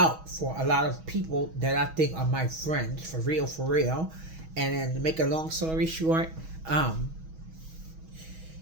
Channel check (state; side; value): late; left; 6.2 ms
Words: for a lot of people that I think are my friends, for real. And then to make a long story short,